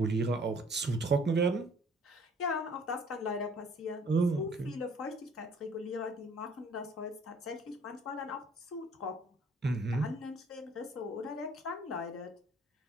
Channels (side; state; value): both; normal; correlation 0.57